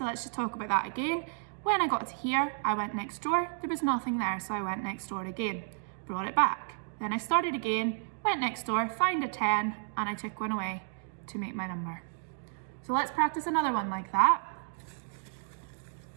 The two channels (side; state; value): left; silent; 56 dB below the other